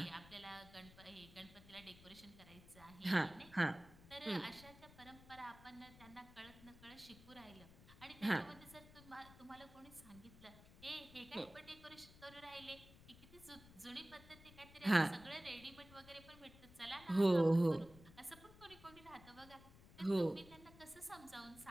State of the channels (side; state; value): left; noise; rumble, 20 dB below the sound